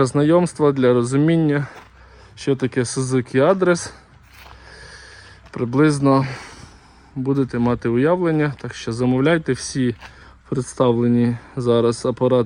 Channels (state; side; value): identical; both; correlation 1.00